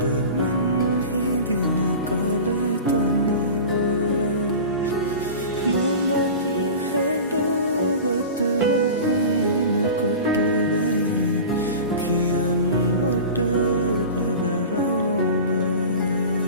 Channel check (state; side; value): inverted; both; correlation -0.34